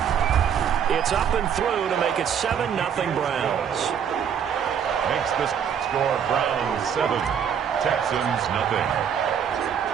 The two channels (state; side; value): quieter; left; 8.0 dB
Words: It's up and through to make it 7-0 Browns. Makes the score Browns 7, Texans nothing.